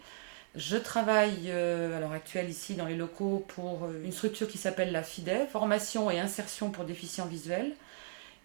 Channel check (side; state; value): left; silent; digital silence